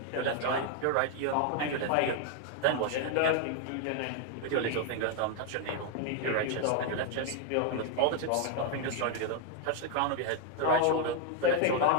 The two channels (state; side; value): different; both; correlation 0.00